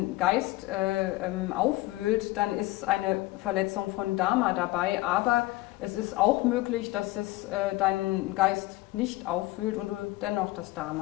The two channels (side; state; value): right; quieter; 18.8 dB